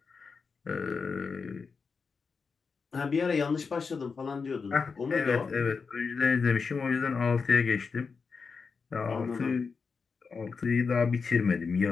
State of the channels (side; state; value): right; quieter; 5.1 dB